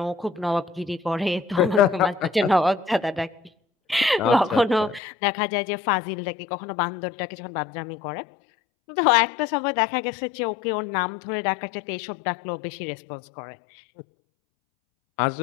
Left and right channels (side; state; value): right; drops out; at 5.0 s